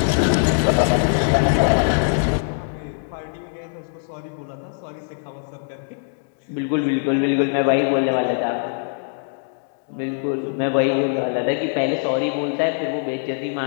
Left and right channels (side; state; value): right; silent; digital silence